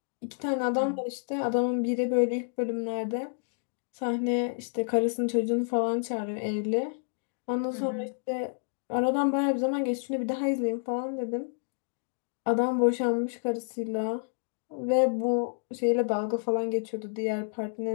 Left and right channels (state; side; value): silent; right; digital silence